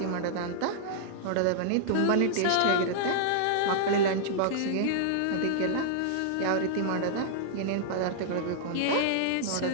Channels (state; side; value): different; both; correlation -0.01